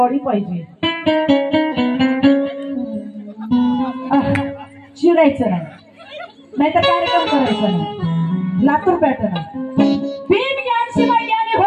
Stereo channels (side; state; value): both; identical; correlation 1.00